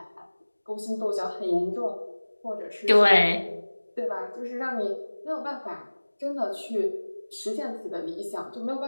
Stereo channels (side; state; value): both; inverted; correlation -1.00